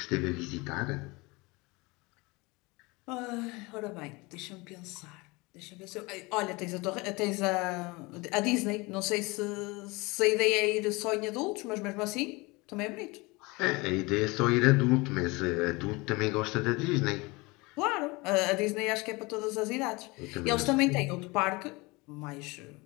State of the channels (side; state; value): right; quieter; 24.7 dB